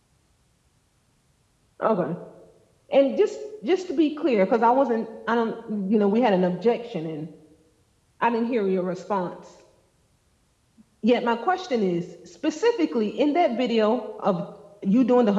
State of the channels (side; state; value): both; identical; correlation 1.00